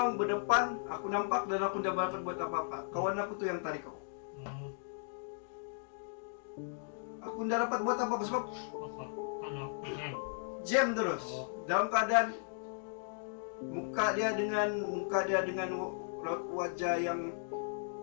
berdepan, aku nampak dan aku tidak dapat buat apa-apa. Kawan aku tu yang tarik aku. Aku tidak dapat buat apa-apa sebab jam terus. Dalam keadaan muka dia dengan wajah yang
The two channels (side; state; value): right; silent; digital silence